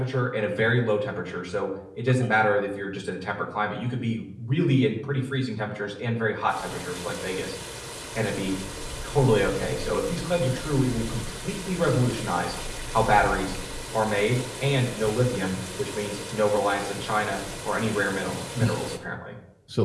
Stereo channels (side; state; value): both; identical; correlation 1.00